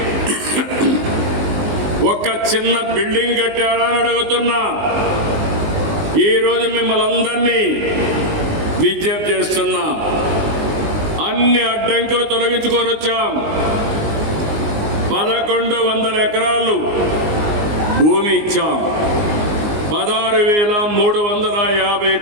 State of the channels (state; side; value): late; left; 19 ms